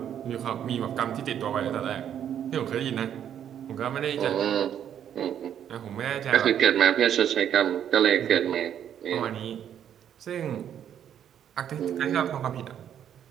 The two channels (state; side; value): quieter; left; 9.6 dB